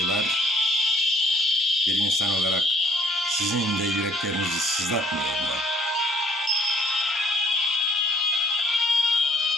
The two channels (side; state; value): both; normal; correlation 0.61